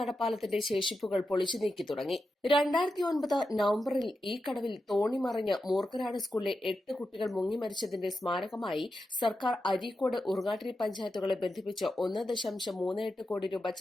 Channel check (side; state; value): both; normal; correlation 0.89